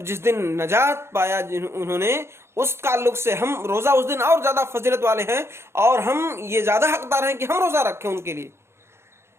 جس دن نجات پایا انہوں نے، اس تعلق سے ہم روزہ اس دن اور زیادہ فضیلت والے ہیں، اور ہم یہ زیادہ حقدار ہیں کہ ہم روزہ رکھیں ان کے لیے،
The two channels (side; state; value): left; late; 0.12 ms